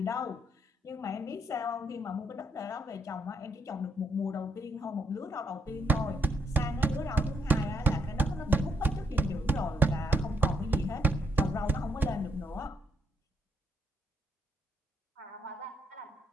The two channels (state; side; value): normal; both; correlation 0.74